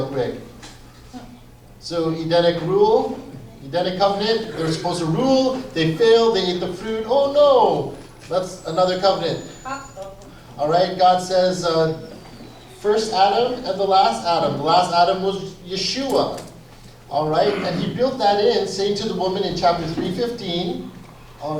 quick. So Edenic rule, Edenic covenant, they were supposed to rule, they failed, they ate the fruit. Oh no, that's another covenant. All right, God says, first Adam and the last Adam. The last Adam was Yeshua. All right, and he built that in, saying to the woman in chapter 3:15, all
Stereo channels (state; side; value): identical; both; correlation 1.00